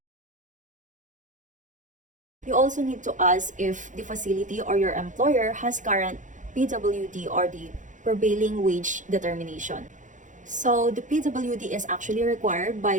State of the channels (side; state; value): left; late; 0.37 ms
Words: you also need to ask if the facility or your employer has current PWD or the prevailing wage determination. So the PWD is actually required